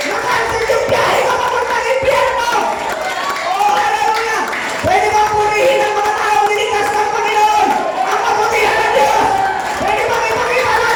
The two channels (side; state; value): both; identical; correlation 1.00